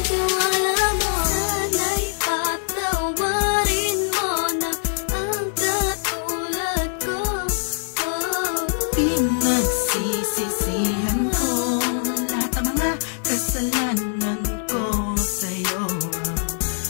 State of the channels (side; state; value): right; silent; digital silence